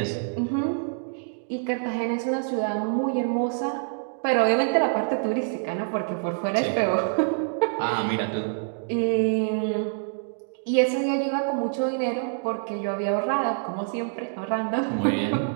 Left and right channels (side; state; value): left; silent; digital silence